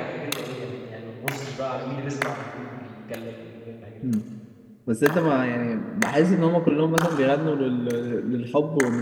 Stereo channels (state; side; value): identical; both; correlation 1.00